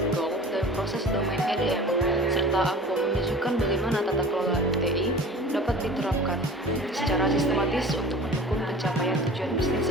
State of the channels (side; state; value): both; normal; correlation 0.41